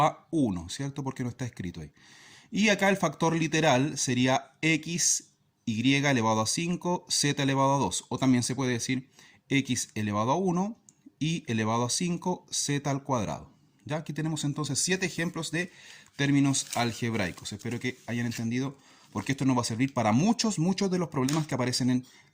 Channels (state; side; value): identical; both; correlation 1.00